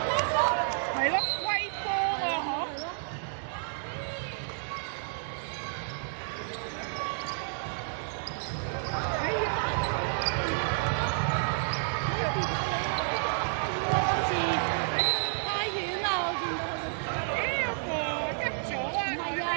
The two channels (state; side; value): silent; left; digital silence